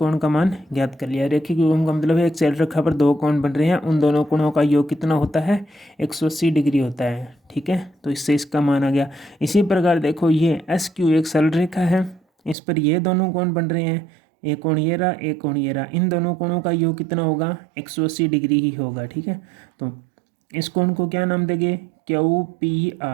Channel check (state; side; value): drops out; left; at 12.6 s